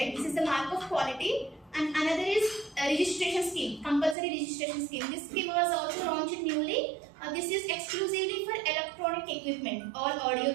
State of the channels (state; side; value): drops out; left; at 4.2 s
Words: This is the mark of quality. And another is a registration scheme, compulsory registration scheme. This scheme was also launched newly. This is exclusively for electronic equipment, all audio,